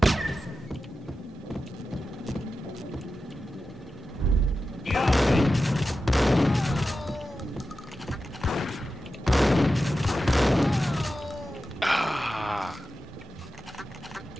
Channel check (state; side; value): normal; both; correlation 0.92